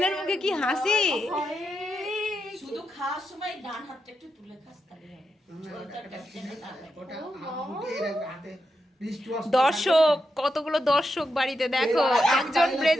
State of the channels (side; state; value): both; normal; correlation 0.86